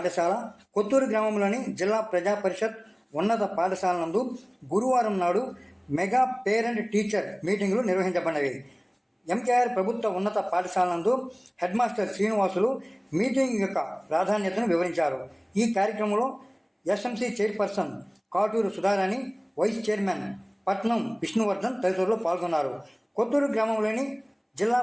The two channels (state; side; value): identical; both; correlation 1.00